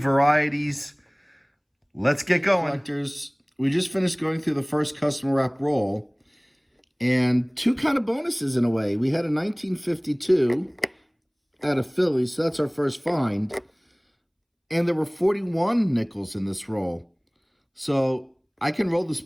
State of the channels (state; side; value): identical; both; correlation 1.00